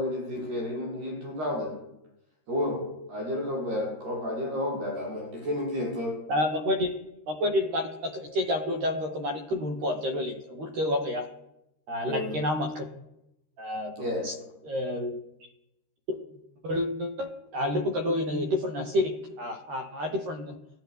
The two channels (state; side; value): late; left; 13 ms